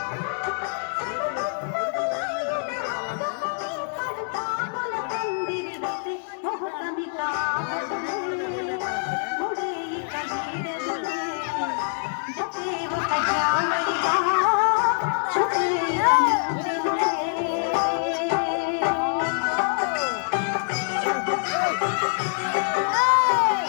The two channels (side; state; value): right; silent; digital silence